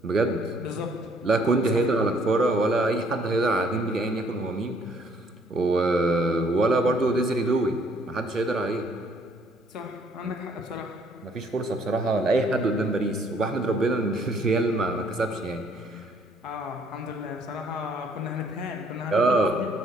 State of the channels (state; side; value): normal; both; correlation 0.63